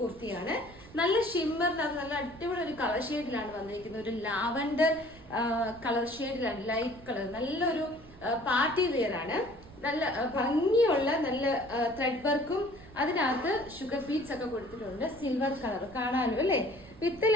കുർത്തിയാണ്. നല്ല ഷിമ്മറിനകത്ത് നല്ല അടിപൊളി ഒരു കളർ ഷെയ്ഡിലാണ് വന്നിരിക്കുന്നത്. ഒരു ലാവൻഡർ കളർ ഷെയ്ഡിലാണ്, ലൈറ്റ് കളർ. നല്ലൊരു പാർട്ടി വെയർ ആണ്. നല്ല ഭംഗിയുള്ള നല്ല ത്രെഡ് വർക്കും അതിനകത്ത് ഷുഗർ ബീഡ്സ് ഒക്കെ കൊടുത്തിട്ടുണ്ട്. സിൽവർ കളർ കാണാനും അല്ലേ. വിത്ത്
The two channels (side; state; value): right; noise; rumble, 20 dB below the sound